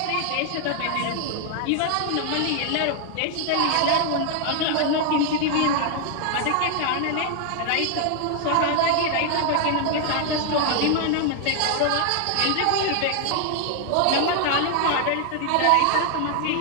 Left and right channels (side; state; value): both; different; correlation 0.00